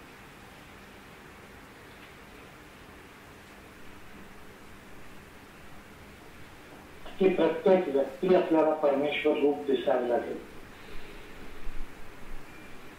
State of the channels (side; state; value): both; identical; correlation 1.00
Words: की प्रत्येक व्यक्ती आपल्याला परमेश्वर रूप दिसायला लागेल.